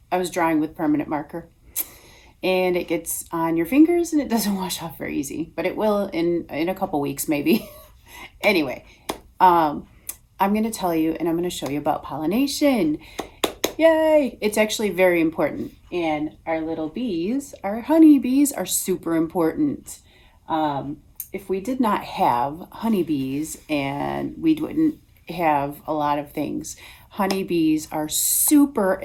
drawing with permanent marker, and it gets on your fingers and it doesn't wash off very easy, but it will in a couple weeks maybe. Anyway, um, I'm going to tell you and I'm going to show you about pollination. Yay! It's actually very important. And our little bees, our honeybees, are super important. Um, if we did not have honeybees, and we wouldn't have a lot of things. Honeybees are super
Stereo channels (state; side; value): identical; both; correlation 1.00